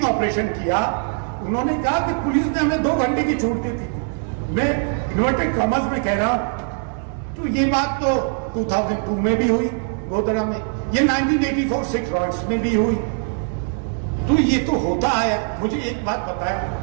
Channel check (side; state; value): left; silent; 56 dB below the other